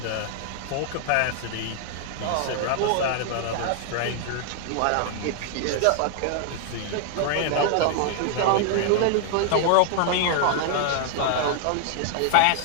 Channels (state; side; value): different; both; correlation 0.00